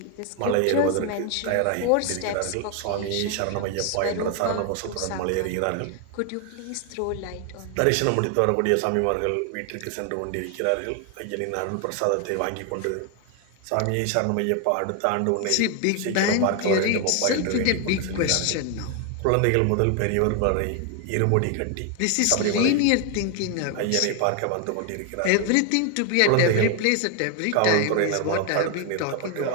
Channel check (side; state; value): both; different; correlation 0.01